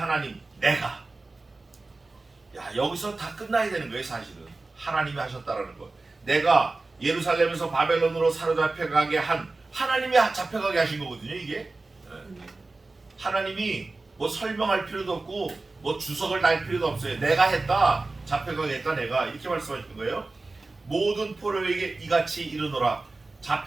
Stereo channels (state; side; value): quieter; left; 3.4 dB